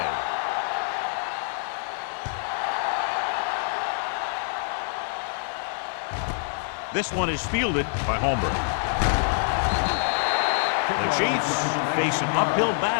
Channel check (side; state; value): right; silent; 56 dB below the other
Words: This one is fielded by Holmberg. The Chiefs face an uphill